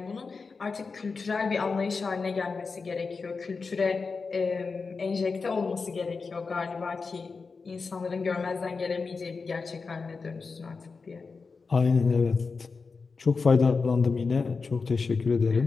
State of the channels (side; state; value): right; quieter; 4.6 dB